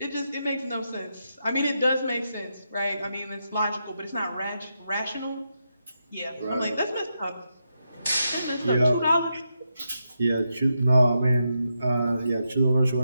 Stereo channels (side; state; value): both; inverted; correlation -0.84